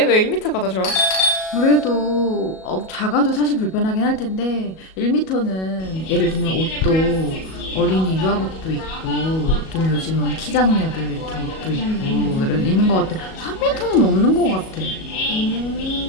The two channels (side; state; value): right; late; 37 ms